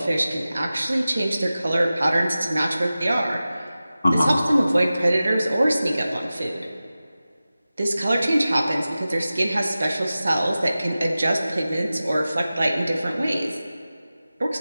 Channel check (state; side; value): inverted; both; correlation -0.95